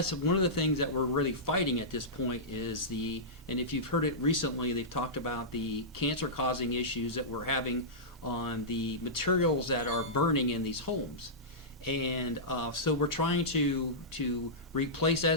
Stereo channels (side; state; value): both; normal; correlation -0.15